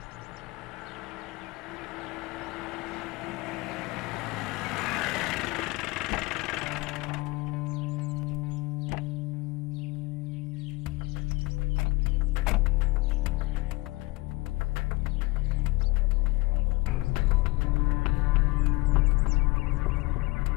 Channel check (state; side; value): quieter; right; 23.4 dB